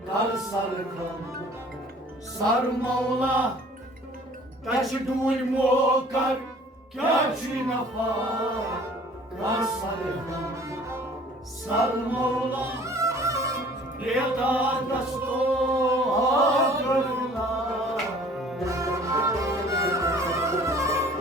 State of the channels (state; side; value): normal; both; correlation 0.51